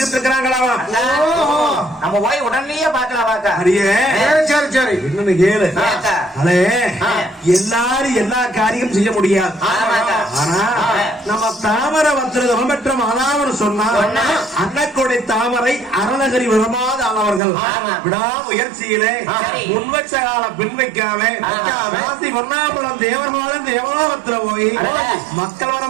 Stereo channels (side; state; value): left; drops out; at 17.4 s